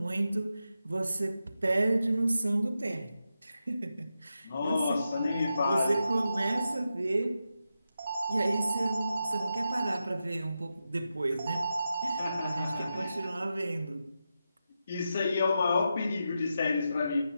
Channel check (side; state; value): both; inverted; correlation -0.89